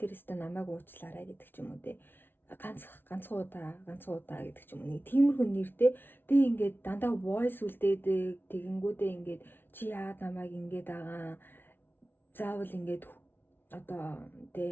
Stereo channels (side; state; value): right; late; 0.10 ms